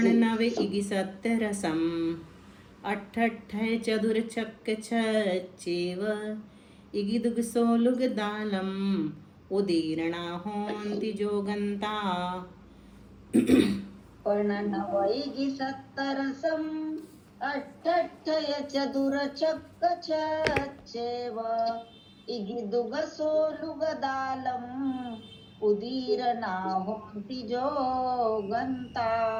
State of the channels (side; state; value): both; identical; correlation 1.00